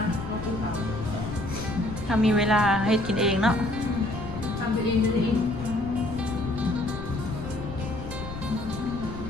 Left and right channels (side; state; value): left; noise; rumble, 10 dB below the sound